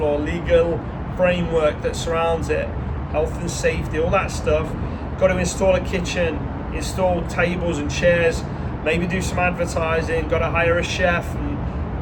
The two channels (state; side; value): identical; both; correlation 1.00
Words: or legal framework that surrounds it, health and safety, all that stuff. Got to install a kitchen, install tables and chairs, maybe do some advertising, got to hire a chef